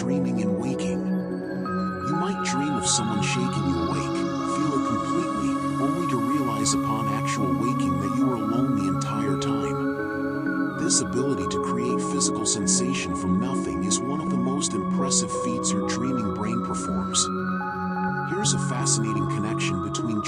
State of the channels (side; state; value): both; identical; correlation 1.00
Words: and waking. You might dream of someone shaking you awake, feel it completely, only to realize upon actual waking that you were alone the entire time. This ability to create physical sensation from nothing is one of the most impressive feats your dreaming brain performs. Here's a fascinating connection between